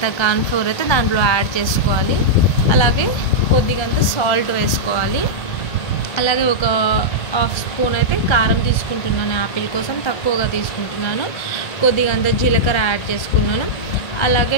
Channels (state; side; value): late; right; 1.3 ms